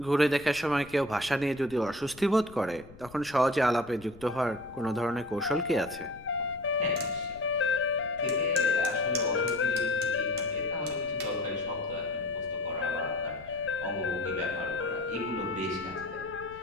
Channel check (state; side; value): noise; left; rumble, 20 dB below the sound